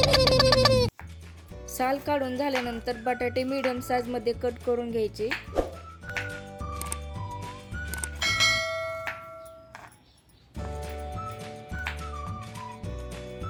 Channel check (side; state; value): both; identical; correlation 1.00